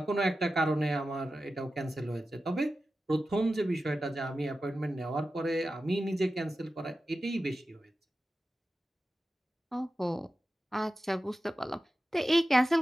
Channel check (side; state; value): both; normal; correlation 0.93